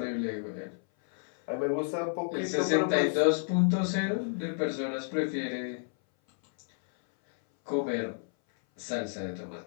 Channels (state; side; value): silent; right; 58 dB below the other